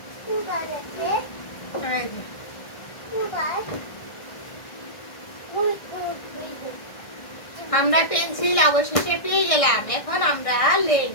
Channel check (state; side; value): late; right; 1.6 ms